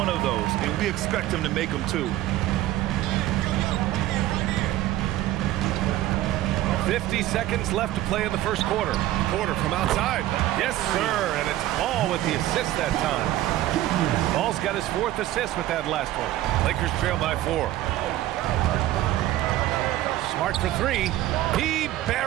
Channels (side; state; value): left; quieter; 14.7 dB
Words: of those, and we expect him to make them too. 50 seconds left to play in the first quarter. Porter from outside. Yes, sir, and it's Ball with the assist that time. Ball's got his 4th assist with that last one. Lakers trail by 4. Smart for 3. He